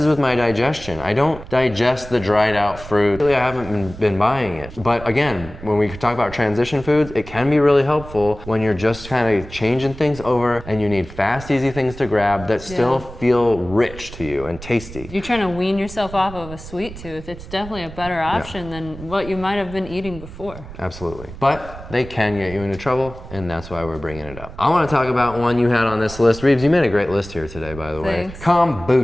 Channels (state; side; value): noise; right; rumble, 14 dB below the sound